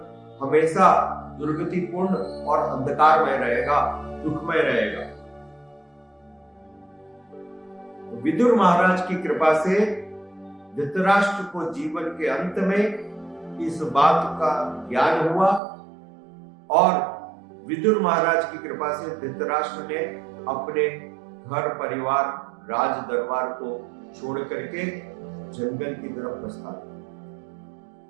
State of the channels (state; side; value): drops out; left; at 15.6 s